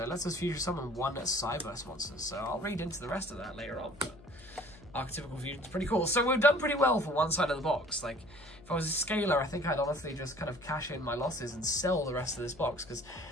let's just fusion summon one Cyburst monster. So I'll read into the rest of that later on, but Archetypical Fusion is pretty cool. So we've done pretty well for one side of the box. Like, if I was a scaler, I think I'd honestly just kind of cash in my losses and sell the rest of this box, because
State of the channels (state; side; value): noise; left; hum, 22 dB below the sound